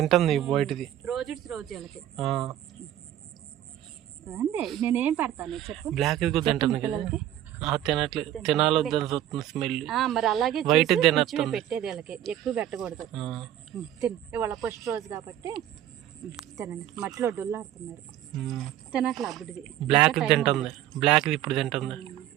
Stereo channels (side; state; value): left; quieter; 12.2 dB